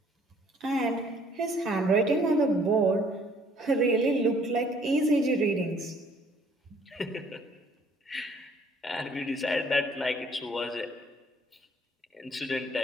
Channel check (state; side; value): normal; both; correlation 0.60